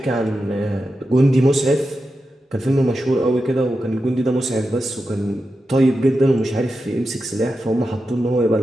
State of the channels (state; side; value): normal; both; correlation 0.90